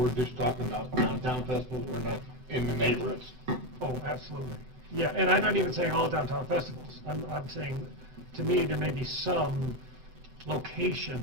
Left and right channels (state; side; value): late; left; 7.9 ms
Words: just talking about downtown festivals, we're not in the neighborhoods. Oh, absolutely. Yeah, and I'm not even saying all downtown festivals. I'm saying, to me, there may be some